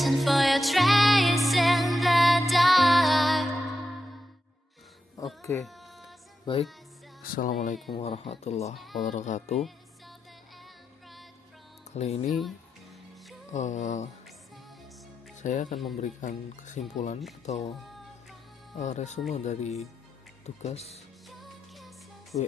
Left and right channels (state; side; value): normal; both; correlation 0.87